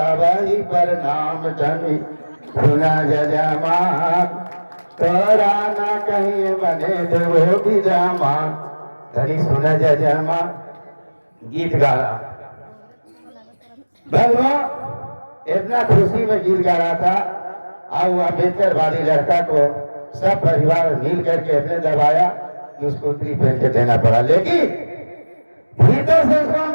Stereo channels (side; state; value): both; inverted; correlation -1.00